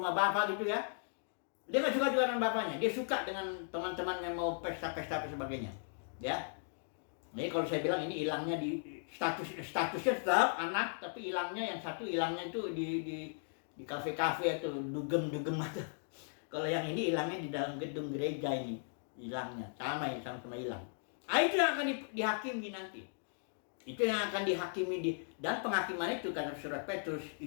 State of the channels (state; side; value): silent; right; digital silence